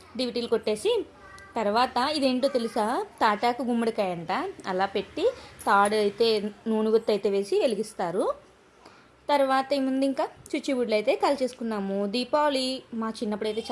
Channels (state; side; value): identical; both; correlation 1.00